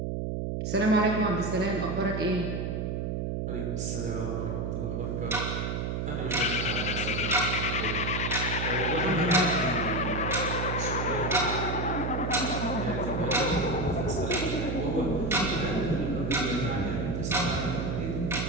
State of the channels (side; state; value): right; noise; hum, 1 dB below the sound